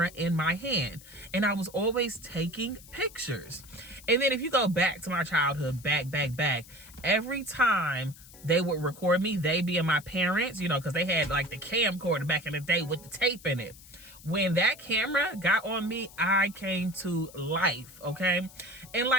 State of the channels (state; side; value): noise; left; hiss, 20 dB below the sound